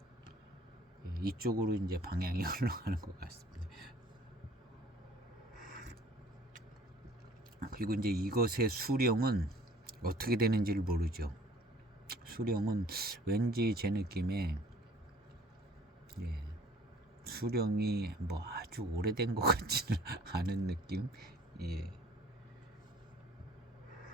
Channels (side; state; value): both; normal; correlation 0.53